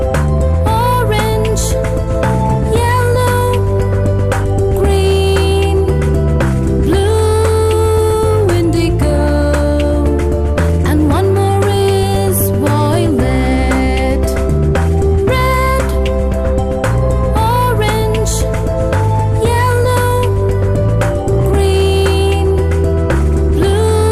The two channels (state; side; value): identical; both; correlation 1.00